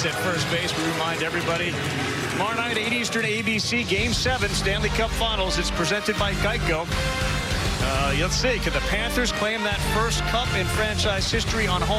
at first base. We remind everybody, tomorrow night, 8 Eastern, ABC, Game 7, Stanley Cup Finals. It's presented by Geico. Let's see, can the Panthers claim that first cup in franchise history on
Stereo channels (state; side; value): identical; both; correlation 1.00